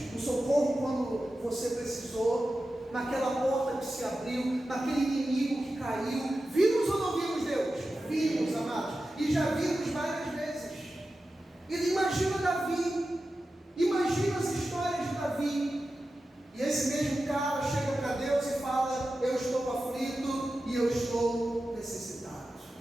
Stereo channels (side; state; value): both; normal; correlation 0.93